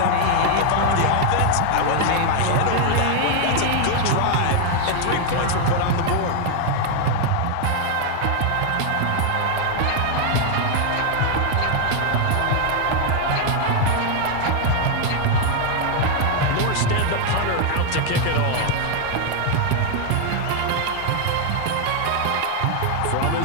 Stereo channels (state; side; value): different; both; correlation 0.00